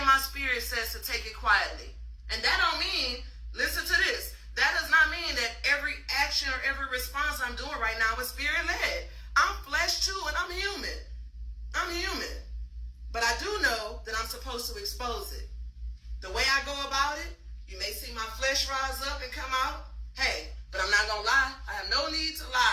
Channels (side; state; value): both; identical; correlation 1.00